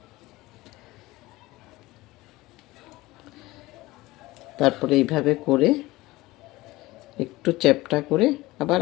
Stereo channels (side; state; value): right; quieter; 19.3 dB